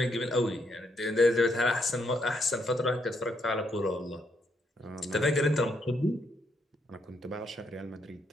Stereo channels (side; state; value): both; normal; correlation 0.76